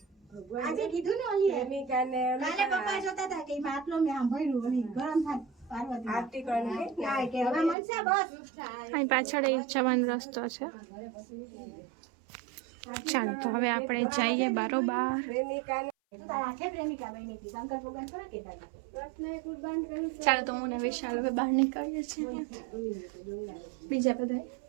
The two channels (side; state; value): left; drops out; at 7.8 s